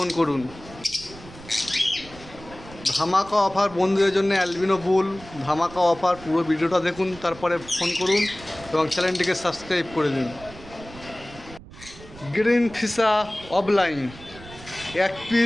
করুন। ধামাকা অফার বন্ধুদের জন্য, অ্যালবিনো বুল ধামাকা অফার। পুরো ভিডিওটা দেখুন, তারপরে ফোন করুন এবং চ্যানেলটিকে সাবস্ক্রাইব করে দিন। Green visa offline 1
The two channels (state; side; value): noise; right; rumble, 18 dB below the sound